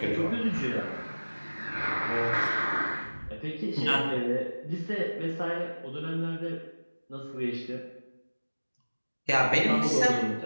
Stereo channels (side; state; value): both; inverted; correlation -1.00